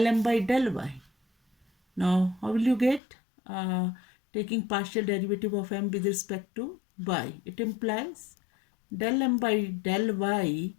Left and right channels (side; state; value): right; drops out; at 3.0 s